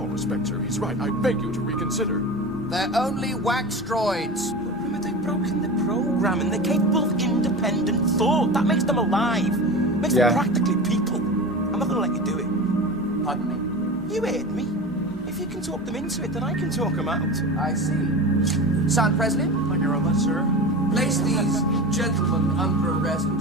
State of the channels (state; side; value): normal; both; correlation 0.30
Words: respect, sir, he's right. I beg you to reconsider. They're only wax droids. Rimmer, they've broken the program and they're capable of independent thought. That makes them alive. Makes them practically people. I'm not gonna let you do it. Pardon me? You heard me. If you can talk them into it, then I can talk them out. I see. Sergeant Presley? Thank you very much, sir. Place these gentlemen under arrest